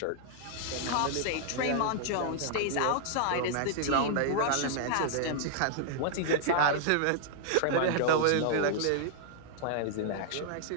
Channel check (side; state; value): both; different; correlation -0.01